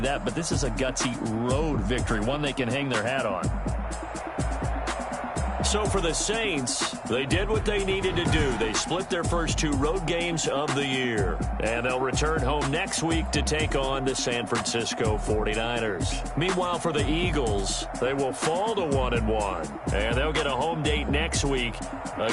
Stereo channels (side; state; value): both; identical; correlation 1.00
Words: that, but this is a gutsy road victory, one they can hang their hat on. So for the Saints, they did what they needed to do. They split their first 2 road games of the year. And they'll return home next week to take on the San Francisco 49ers. Meanwhile, for the Eagles, they will fall to 1-1. And they'll get a home date next week